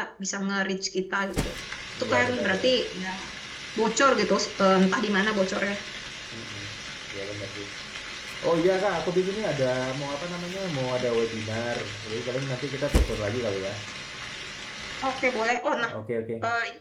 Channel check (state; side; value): identical; both; correlation 1.00